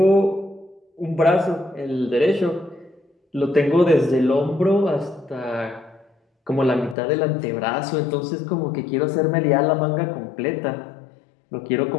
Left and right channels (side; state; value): right; drops out; at 7.0 s